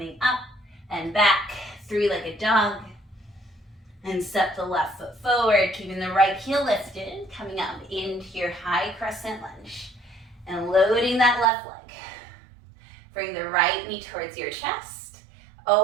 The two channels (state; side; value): drops out; left; at 11.5 s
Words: up and back. Three-legged dog. And step the left foot forward, keeping the right heel lifted, coming up into your high crescent lunge. And loading that left leg. Bring the right knee towards your chest.